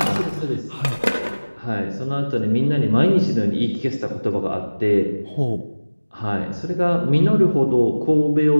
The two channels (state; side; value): inverted; both; correlation -1.00